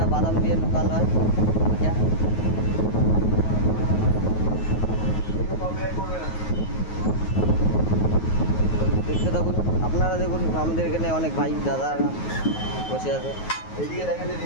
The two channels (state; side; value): late; right; 9.4 ms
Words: বাদাম দিয়ে লোকাল হয়। দেখতে থাকুন আপনারা, দেখুন আমাদের এখানে অনেক ভাই দাদা বসে আছে।